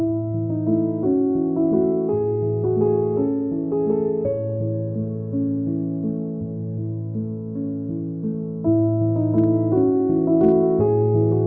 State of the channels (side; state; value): both; identical; correlation 1.00